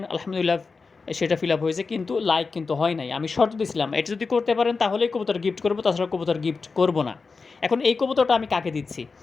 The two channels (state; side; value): quieter; right; 4.5 dB